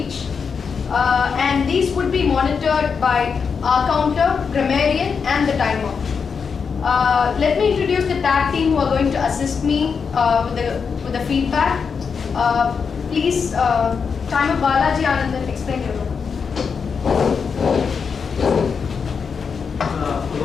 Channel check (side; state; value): right; quieter; 5.9 dB